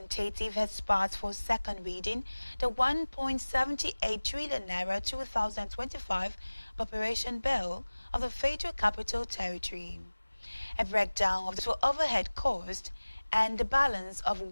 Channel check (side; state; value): both; inverted; correlation -1.00